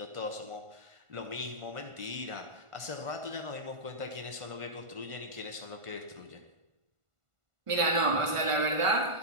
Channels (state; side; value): late; left; 1.5 ms